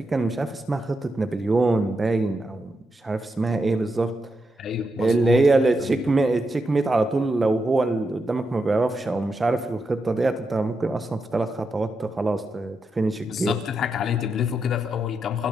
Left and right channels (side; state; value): both; normal; correlation 0.85